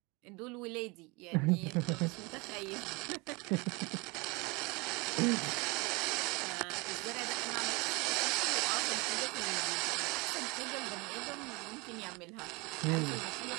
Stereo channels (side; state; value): left; quieter; 26.9 dB